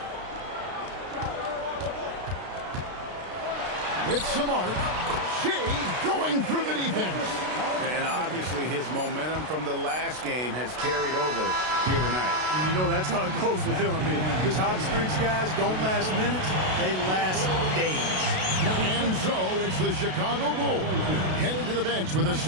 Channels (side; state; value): left; late; 32 ms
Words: With some arc. Shea going through the defense. And obviously his momentum from the last game has carried over here tonight. And you know that's how it goes with him. I mean, his hot streaks, guys, don't last minutes. They last days. And so it's the Chicago Bulls heading to the bench with a